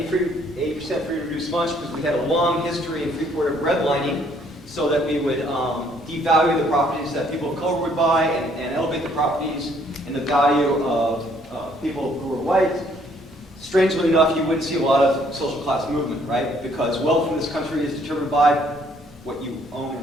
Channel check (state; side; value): normal; both; correlation 0.65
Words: free and reduced lunch, because we had a long history in Freeport of redlining, so that we would devalue the properties that people of color would buy and elevate the properties and the value of people who were white. Strangely enough, you wouldn't see a lot of social class movement, right? Because wealth in this country is determined by what you own